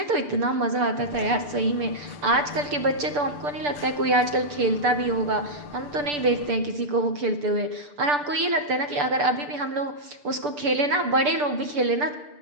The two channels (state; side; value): late; left; 6.8 ms